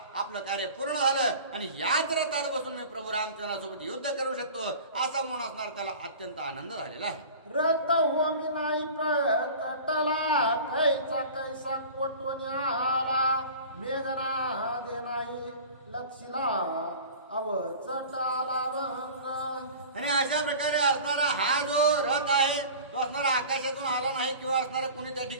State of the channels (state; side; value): inverted; both; correlation -0.39